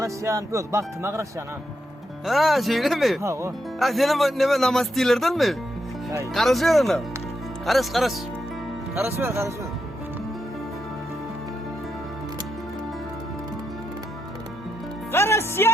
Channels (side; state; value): both; normal; correlation 0.83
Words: Yok baktım Karasyan ha. Ha şeyle mi? Ha o. Ha senin ne namaz değillerden mi? Hay. Karışıyor ona. Karış. Karış ver.